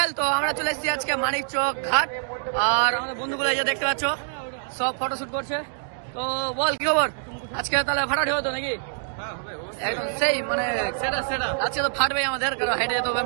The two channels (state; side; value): silent; left; digital silence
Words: তো আমরা চলে এসেছি আজকে মানিকচক ঘাট, আর আমাদের বন্ধুগুলো এই যে দেখতে পাচ্ছ সব ফটোশুট করছে। তো বল কি খবর আজকে? তাহলে ফাটাফাটি হতো নাকি? একদম সেই মানে আজকে তো ফাটবেই আমাদের, কারণ হেঁটে যেতে হবে